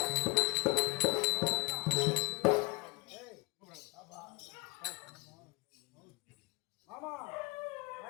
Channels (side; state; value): right; quieter; 25.3 dB